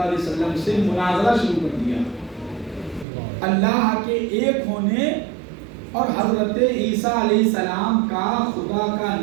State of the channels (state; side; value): drops out; left; at 3.1 s